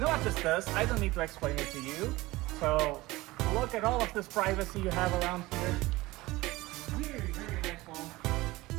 what this does? I don't need to explain it to you. So look at all of this privacy you have around here. Very, very nice home.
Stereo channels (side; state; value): left; quieter; 19.8 dB